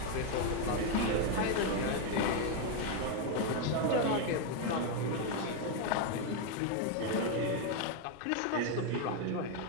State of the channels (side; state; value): both; different; correlation 0.01